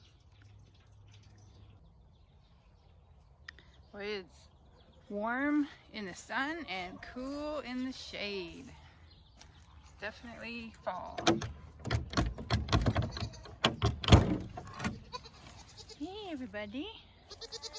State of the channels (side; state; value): both; identical; correlation 1.00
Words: Boy, it's warm in the sun and cool in the shade. It's definitely fall. Hey everybody.